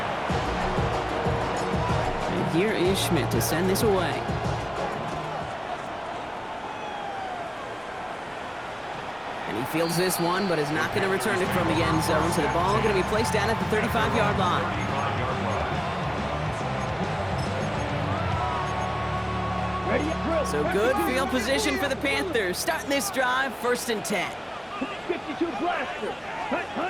And here is Schmidt to send this away. And he fields this one, but is not going to return it from the end zone. So the ball going to be placed down at the 35-yard line. So good field position for the Panthers. Starting this drive, 1st and 10. 52 blaster.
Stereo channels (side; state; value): both; identical; correlation 1.00